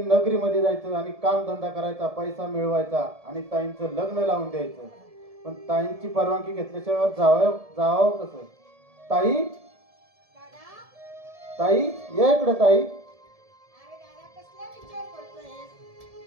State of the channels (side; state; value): left; late; 1.7 ms